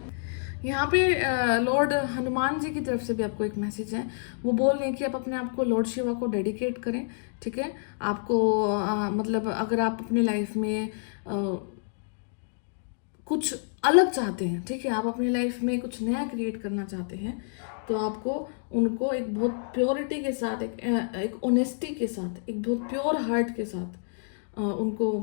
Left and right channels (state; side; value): silent; right; digital silence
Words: यहाँ पे लॉर्ड हनुमान जी की तरफ से भी आपको एक मैसेज है। वो बोल रहे हैं कि आप अपने आप को लॉर्ड शिवा को डेडिकेट करें। ठीक है, आपको मतलब अगर आप अपनी लाइफ में कुछ अलग चाहते हैं, ठीक है, आप अपनी लाइफ में कुछ नया क्रिएट करना चाहते हैं, तो आपको उनको एक बहुत प्योरिटी के साथ, एक ऑनेस्टी के साथ, एक बहुत प्योर हार्ट के साथ उनको